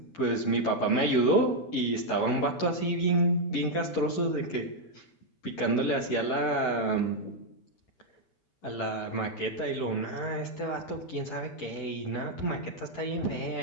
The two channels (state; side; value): late; right; 11 ms